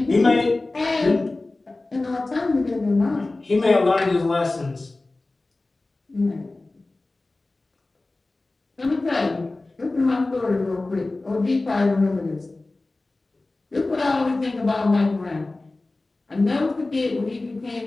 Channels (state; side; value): quieter; right; 3.1 dB